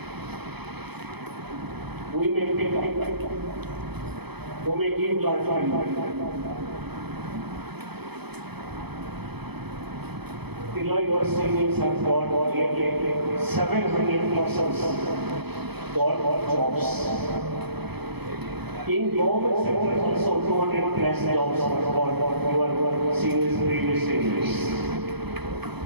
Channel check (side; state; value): left; late; 0.98 ms